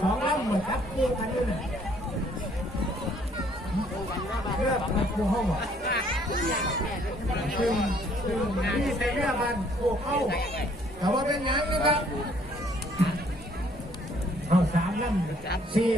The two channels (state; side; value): normal; both; correlation 0.63